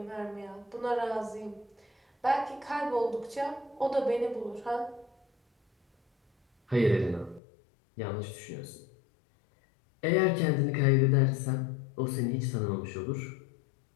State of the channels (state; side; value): drops out; right; at 7.4 s